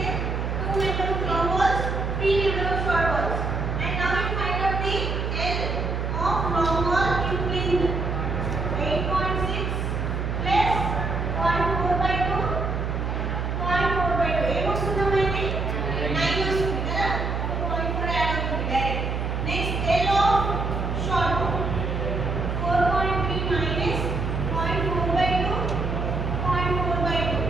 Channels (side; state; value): right; noise; hum, 2 dB below the sound